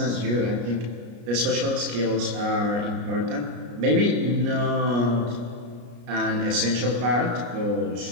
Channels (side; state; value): left; late; 33 ms